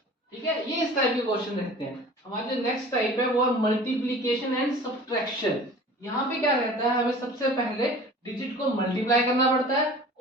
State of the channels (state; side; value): normal; both; correlation 0.43